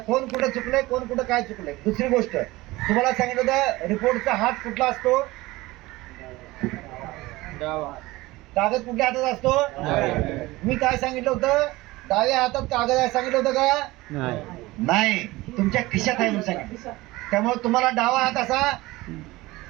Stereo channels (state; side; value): quieter; left; 19.9 dB